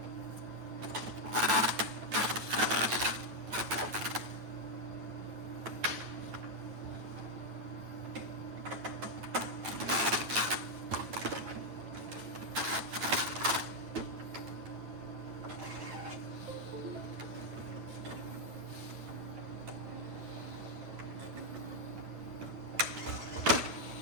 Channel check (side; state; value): left; late; 9.5 ms